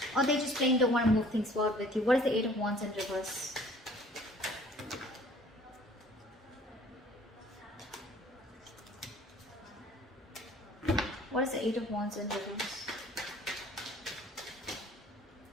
Or they just plain don't want to move things forward with you. What is the Eight of Wands in reverse? What is the Eight of Wands in reverse?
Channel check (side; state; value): both; normal; correlation 0.53